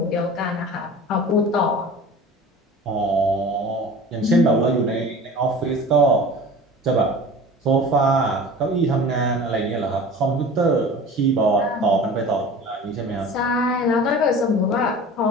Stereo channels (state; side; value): normal; both; correlation 0.39